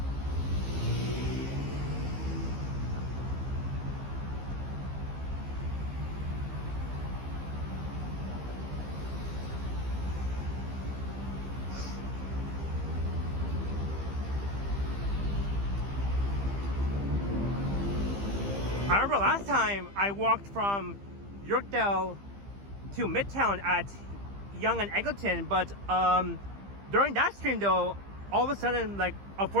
I remember last time I walked from Yorkdale to Midtown at Yonge and Eglinton, but during that stream though, all of a sudden, like,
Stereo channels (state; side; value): late; left; 15 ms